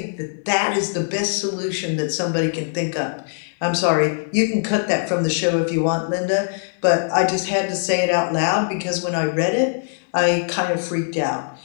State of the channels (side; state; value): right; silent; 65 dB below the other